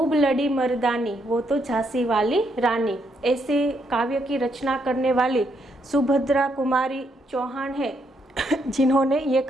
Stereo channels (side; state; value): both; normal; correlation 0.76